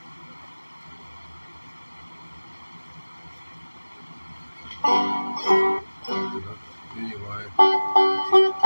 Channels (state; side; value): inverted; both; correlation -1.00